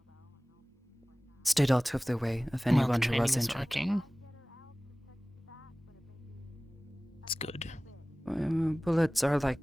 stayed out of the way of anyone who was injured. Working. It's good. Bullets are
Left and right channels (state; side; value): normal; both; correlation 0.98